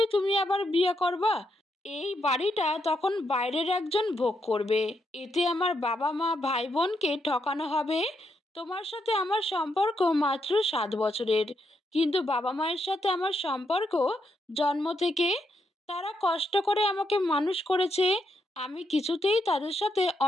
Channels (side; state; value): both; normal; correlation 0.80